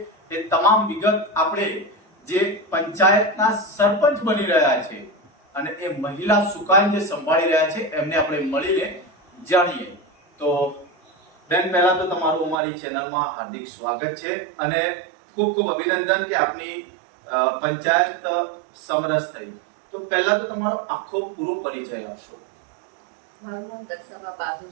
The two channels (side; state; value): left; drops out; at 12.6 s